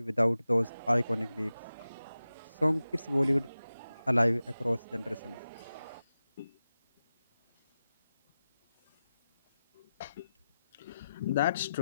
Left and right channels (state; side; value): inverted; both; correlation -0.92